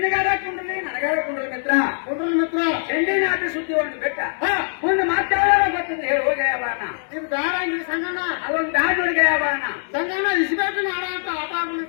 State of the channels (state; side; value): silent; right; digital silence